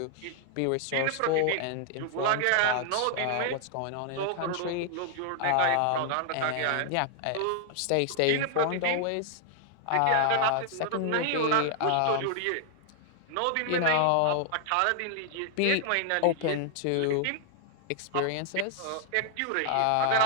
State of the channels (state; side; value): different; both; correlation 0.00